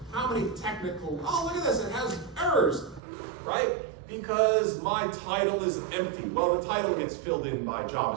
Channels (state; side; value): drops out; left; at 3.0 s